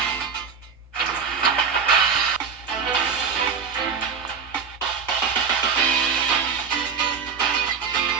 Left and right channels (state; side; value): quieter; left; 6.1 dB